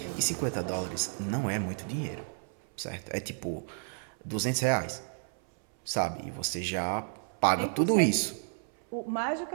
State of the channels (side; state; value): left; silent; 57 dB below the other